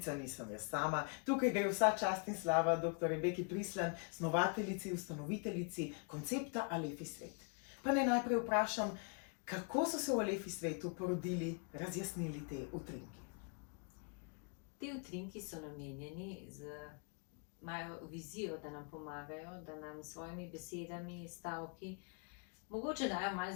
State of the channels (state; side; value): quieter; right; 38.3 dB